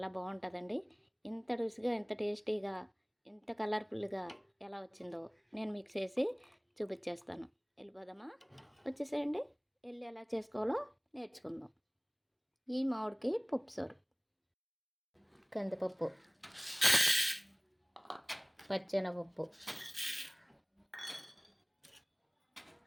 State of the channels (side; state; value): both; identical; correlation 1.00